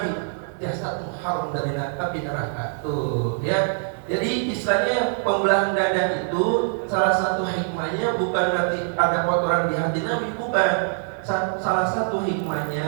Jasadmu haram dari api neraka tuh, ya. Jadi istilahnya pembelahan dada itu salah satu hikmahnya bukan berarti ada kotoran di hati Nabi, bukan. Salah satu hikmahnya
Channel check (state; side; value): silent; left; digital silence